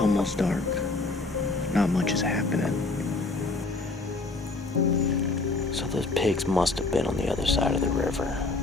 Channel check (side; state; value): right; quieter; 3.4 dB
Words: almost dark. Not much is happening. So those pigs must have been on the other side of the river.